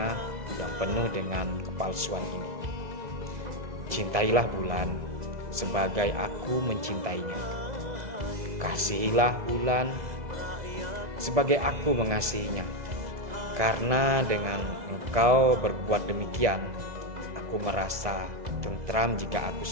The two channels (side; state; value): left; late; 1.7 ms